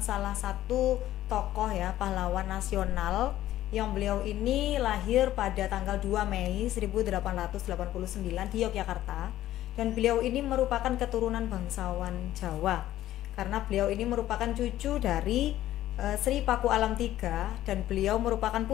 salah satu tokoh ya, pahlawan nasional yang beliau ini lahir pada tanggal 2 Mei 1889 di Yogyakarta, dan beliau ini merupakan keturunan bangsawan Jawa karena beliau ini merupakan cucu dari Sri Paku Alam III dan beliau merupakan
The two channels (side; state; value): right; quieter; 13.8 dB